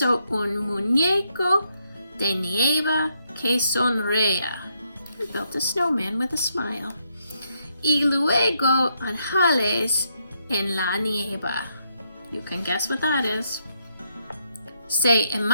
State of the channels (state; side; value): inverted; both; correlation -0.76